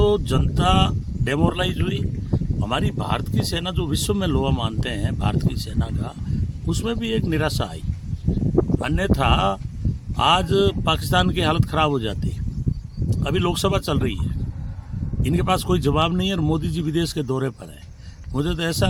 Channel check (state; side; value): identical; both; correlation 1.00